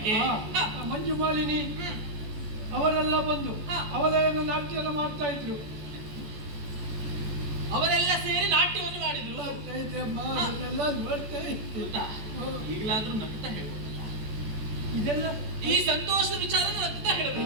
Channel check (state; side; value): late; left; 14 ms